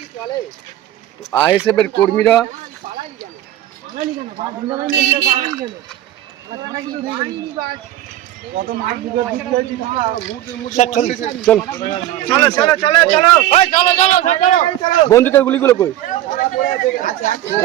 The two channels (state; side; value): quieter; left; 13.2 dB